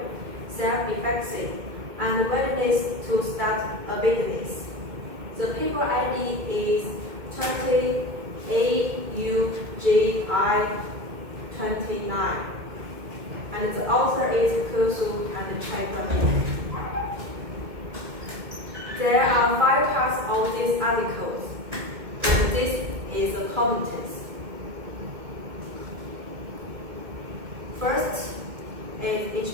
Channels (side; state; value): left; late; 2.1 ms